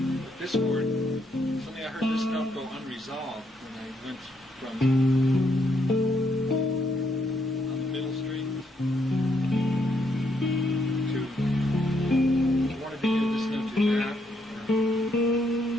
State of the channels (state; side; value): normal; both; correlation 0.75